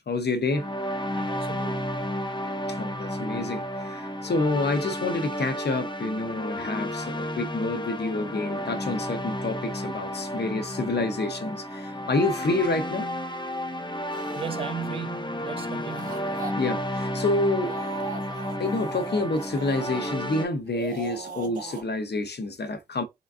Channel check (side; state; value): both; normal; correlation 0.47